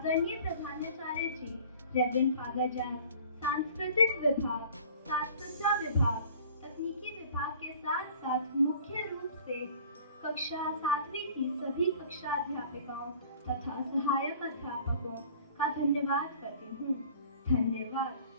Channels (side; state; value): both; inverted; correlation -0.48